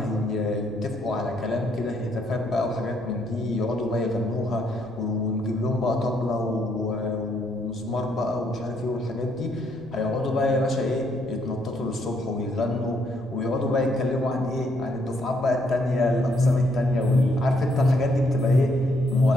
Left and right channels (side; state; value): left; noise; rumble, 25 dB below the sound